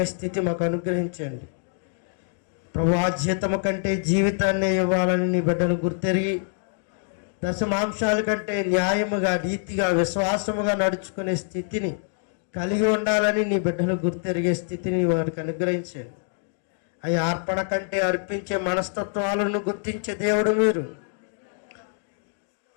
స్థితి మాకు అనుగ్రహించండి ప్రభు. జీతము కంటే జీవితాన్ని ఇవ్వాలని నీ బిడ్డలు గుర్తెరిగి దశమాంశాల కంటే న్యాయముగా నీతిగా విశ్వాసముగా నడుచుకునే స్థితిని కలిగి ఉండాలని నీ బిడ్డలు గుర్తెరిగే స్థితిని వారికి అనుగ్రహించండి. అవి అర్పణ కంటే అర్పించే మనస్తత్వాలను గుర్తించే దేవుడు మీరు.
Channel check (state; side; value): silent; right; digital silence